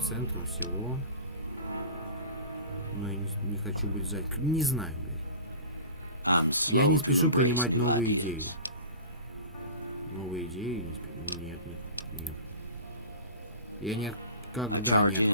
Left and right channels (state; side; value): inverted; both; correlation -0.38